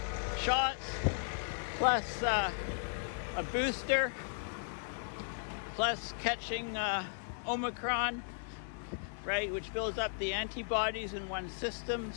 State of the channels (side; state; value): right; silent; digital silence